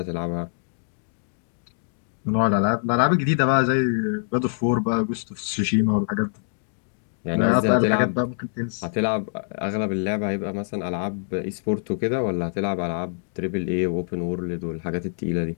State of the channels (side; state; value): right; silent; 62 dB below the other